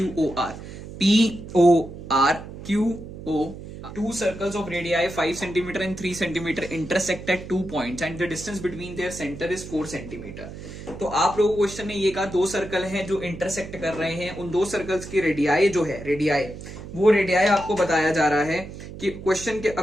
POR QO, two circles of radii 5 cm and 3 cm intersect at 2 points and the distance between their center is 4 cm। तो आप लोगों को क्वेश्चन ने ये कहा दो सर्कल हैं जो इंटरसेक्ट कर रहे हैं, उन दो सर्कल्स की रेडियाई जो है, रेडियाई, वो रेडियाई आपको बताया जा रहा है कि क्वेश्चन के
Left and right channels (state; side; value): noise; right; hum, 12 dB below the sound